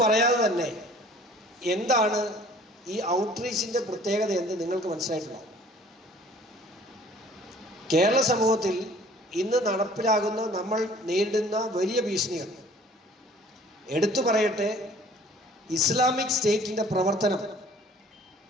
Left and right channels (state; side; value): normal; both; correlation 0.52